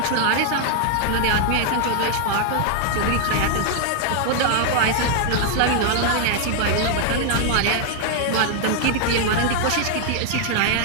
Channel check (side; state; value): both; different; correlation 0.00